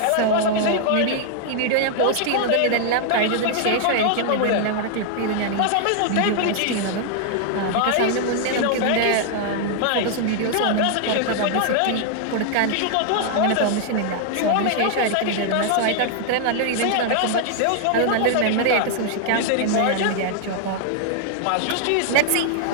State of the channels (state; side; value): different; both; correlation -0.01